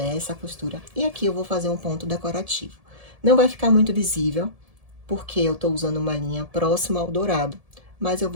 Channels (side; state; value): left; late; 1.7 ms